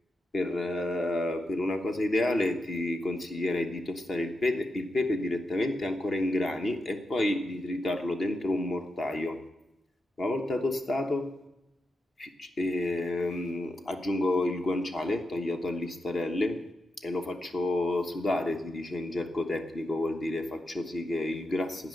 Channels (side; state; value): both; normal; correlation 0.87